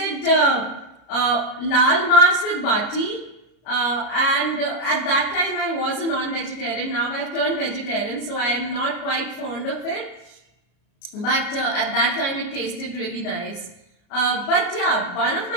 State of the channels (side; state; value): right; late; 33 ms